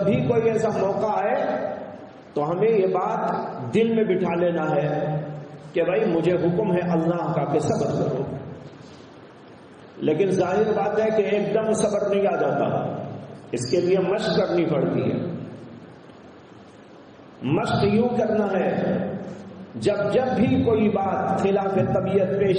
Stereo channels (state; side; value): identical; both; correlation 1.00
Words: بھی کوئی ایسا موقع آئے تو ہمیں یہ بات دل میں بٹھا لینا ہے کہ بھائی مجھے حکم ہے اللہ کا کہ صبر کرو، لیکن ظاہر بات ہے کہ ایک دم صبر نہیں آ جاتا، اس کے لیے مشق کرنی پڑتی ہے۔ مشق یوں کرنا ہے جب بھی کوئی بات خلاف طبیعت